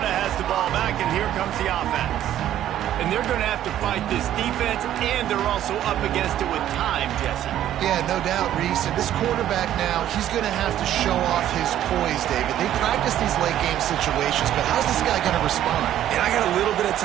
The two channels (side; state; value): left; quieter; 11.8 dB